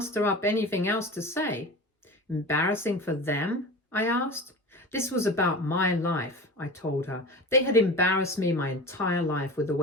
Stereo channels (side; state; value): both; normal; correlation 0.33